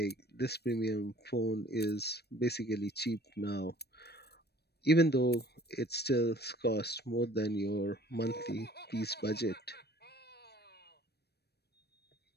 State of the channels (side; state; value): right; late; 0.47 ms